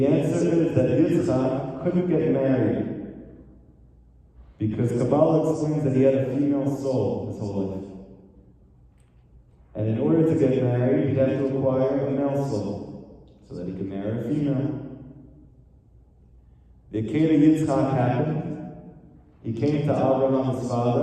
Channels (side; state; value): both; identical; correlation 1.00